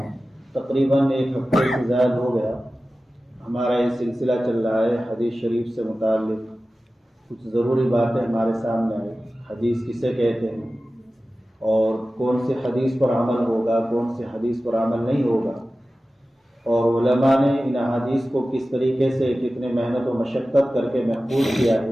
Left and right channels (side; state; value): both; normal; correlation 0.95